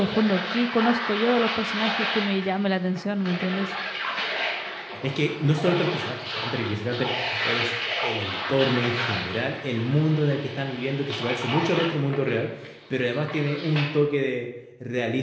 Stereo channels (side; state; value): both; identical; correlation 1.00